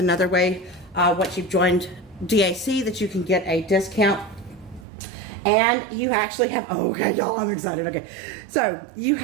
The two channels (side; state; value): left; drops out; at 4.9 s